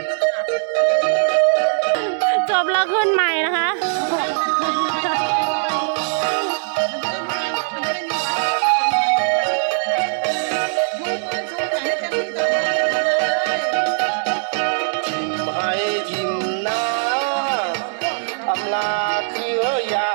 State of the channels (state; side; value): silent; left; 65 dB below the other